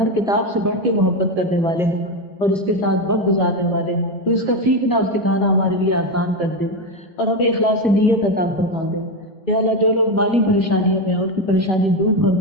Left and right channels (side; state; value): both; normal; correlation 0.12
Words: کتاب سے بڑھ کے محبت کرنے والے ہیں اور اس کے ساتھ وقت گزارنے والے ہیں. تو اس کا سیکھنا اور سکھانا ہمارے لیے آسان کر دے اور ہمیں اخلاص نیت عطا فرما دے. یا اللہ جو لوگ مالی پریشانیوں میں ان کی پریشانی دور